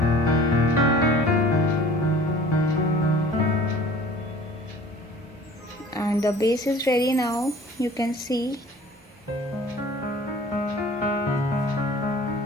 And the base is ready now. You can see.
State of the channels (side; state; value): both; normal; correlation 0.47